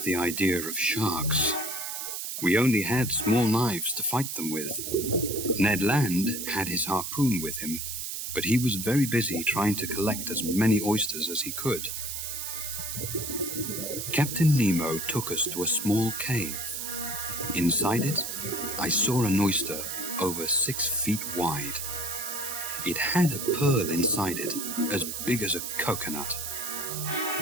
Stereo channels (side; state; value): right; noise; hiss, 5 dB below the sound